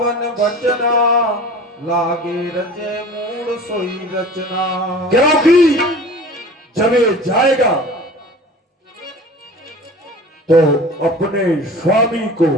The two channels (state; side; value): normal; both; correlation 0.41